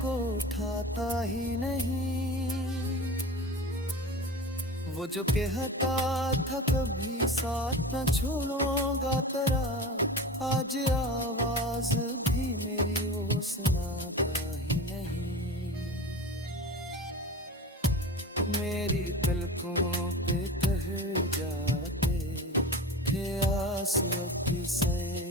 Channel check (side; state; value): both; normal; correlation 0.32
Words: को उठाता ही नहीं। वो जो कहता था कभी साथ न छोड़ूंगा तेरा, आज आवाज भी मेरी वो सुनाता ही नहीं। मेरी पलकों पे ठहर जाते थे आंसुओं की